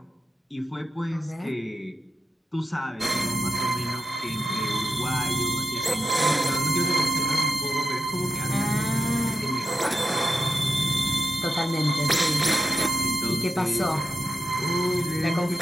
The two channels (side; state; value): both; normal; correlation 0.86